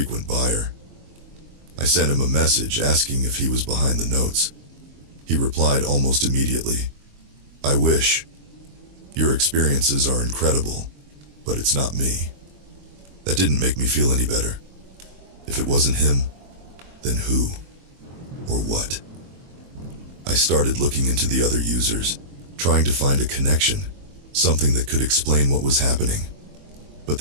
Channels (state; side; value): late; left; 23 ms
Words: buyer. I sent him a message asking if he was behind the notes. He replied almost immediately, "I wish. Your experiences are incredible, but it's not me." That didn't make me feel any better. If it wasn't him, then who? Or what? I started looking into the other users, trying to find a connection, something that could explain what was happening. But